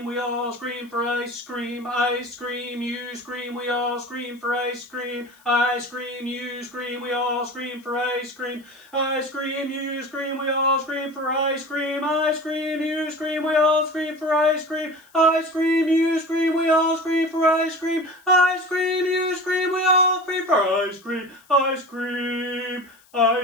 we all scream for ice cream. I scream, you scream, we all scream for ice cream. I scream, you scream, we all scream for ice cream. I scream, you scream, we all scream for ice cream. I scream, you scream, we all scream for ice cream. I scream, you scream, we all scream for ice cream. I scream, you scream, we all scream for ice cream. I scream. I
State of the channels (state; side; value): noise; left; hiss, 30 dB below the sound